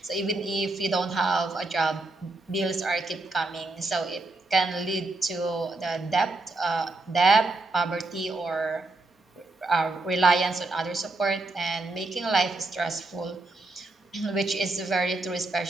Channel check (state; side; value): quieter; left; 3.0 dB